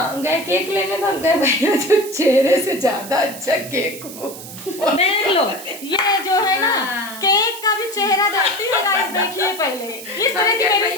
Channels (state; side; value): noise; right; hiss, 13 dB below the sound